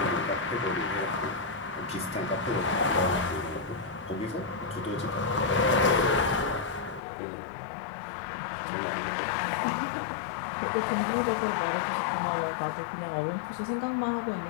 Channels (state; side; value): drops out; right; at 7.0 s